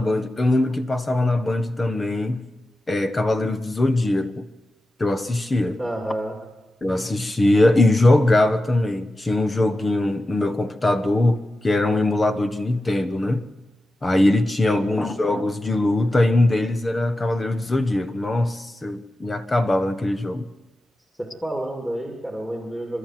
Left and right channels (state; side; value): normal; both; correlation 0.92